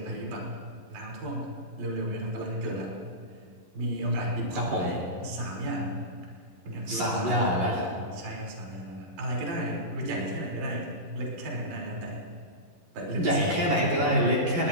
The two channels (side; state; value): left; late; 11 ms